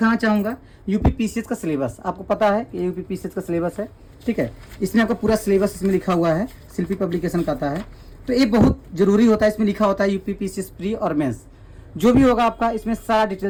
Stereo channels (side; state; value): both; identical; correlation 1.00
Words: चाहूँगा यूपी पीसीएस का सिलेबस। आपको पता है कि यूपी पीसीएस का सिलेबस है, ठीक है। इसमें आपका पूरा सिलेबस इसमें लिखा हुआ है, शिल्पी पब्लिकेशन का आता है। तो ये बहुत जरूरी होता है, इसमें लिखा होता है यूपी पीसीएस प्री और मेंस जो भी होगा आपका, इसमें सारा